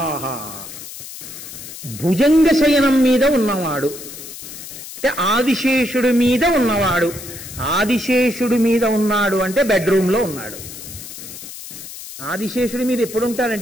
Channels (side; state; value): left; noise; hiss, 12 dB below the sound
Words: భుజంగ శయనం మీద ఉన్నవాడు అంటే ఆదిశేషుడి మీద ఉన్నవాడు. ఆదిశేషుడి మీద ఉన్నాడు అంటే బెడ్రూమ్ లో ఉన్నాడు. ఆదిశేషుడి మీద ఎప్పుడు